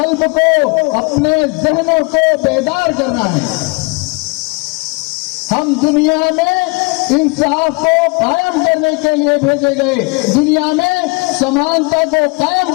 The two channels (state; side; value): quieter; right; 29.7 dB